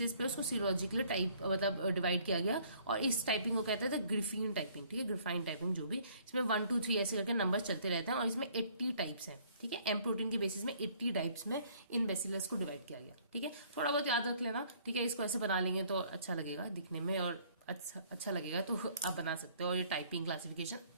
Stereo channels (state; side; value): inverted; both; correlation -0.60